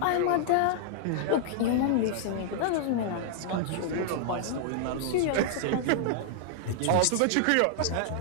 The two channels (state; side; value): different; both; correlation -0.01